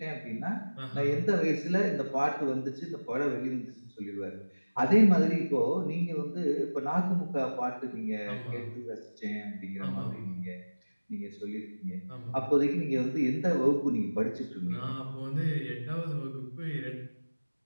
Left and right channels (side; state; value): both; inverted; correlation -1.00